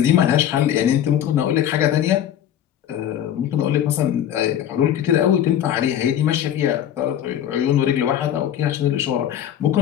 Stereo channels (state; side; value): quieter; right; 10.6 dB